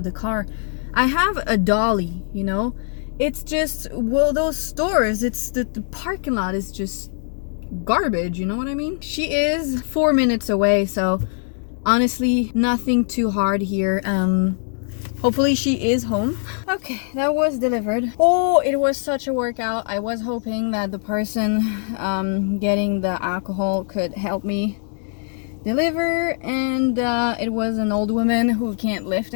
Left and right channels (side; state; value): right; silent; 58 dB below the other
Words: the car. I have a dolly, you know? It's just, well, those stores, it's the parking lot is just garbage, you know what I mean? She is 4 minutes away, so honestly, nothing too hard here. Hopefully she is home. Okay, that was delivered. Oh, it was such a workout. I was hoping that the person getting the alcohol could help me deliver, and it was an old woman who can't lift